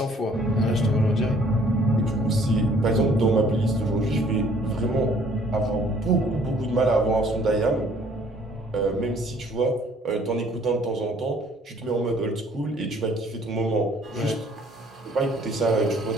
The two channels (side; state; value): both; normal; correlation 0.59